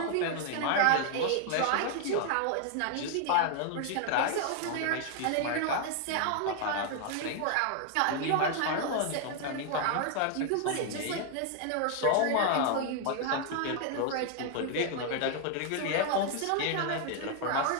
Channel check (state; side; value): different; both; correlation 0.00